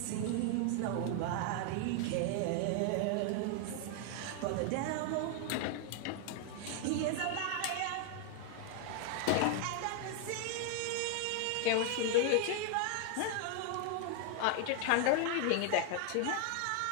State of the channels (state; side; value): different; both; correlation 0.00